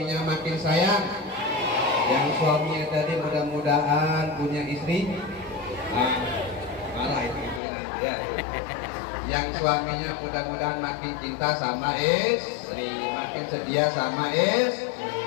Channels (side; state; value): right; drops out; at 7.6 s